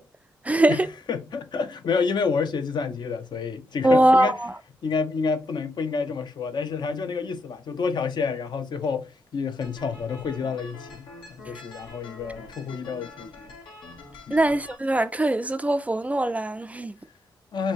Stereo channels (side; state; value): both; normal; correlation 0.80